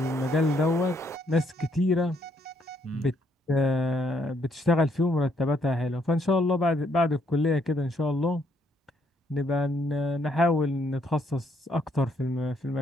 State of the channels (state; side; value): normal; both; correlation 0.71